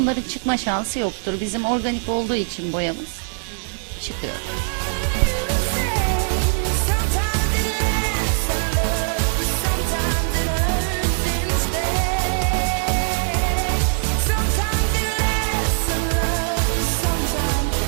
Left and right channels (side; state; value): left; silent; digital silence